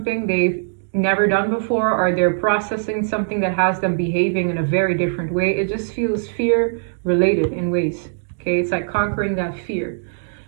they've never done before, or they're processing something that has them behaving in a very different way. It just feels fear related in ways. Okay, it's like conquering that fear.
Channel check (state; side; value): silent; left; digital silence